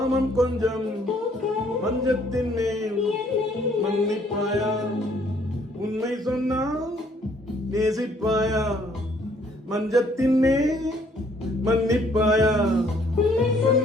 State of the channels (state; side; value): normal; both; correlation 0.63